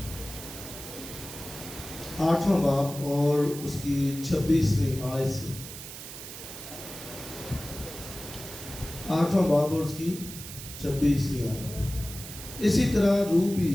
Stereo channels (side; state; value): right; noise; hiss, 11 dB below the sound